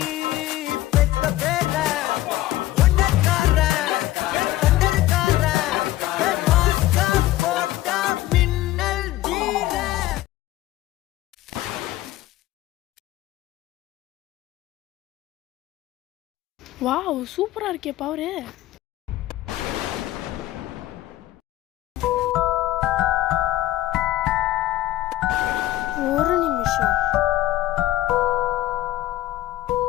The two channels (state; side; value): quieter; right; 15.4 dB